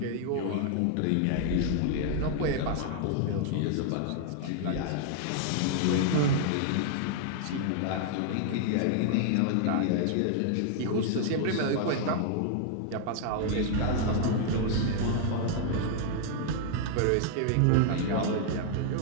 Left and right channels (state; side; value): different; both; correlation 0.00